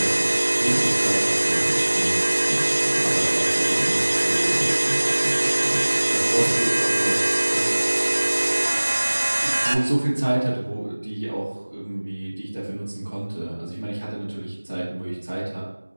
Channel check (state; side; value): inverted; both; correlation -1.00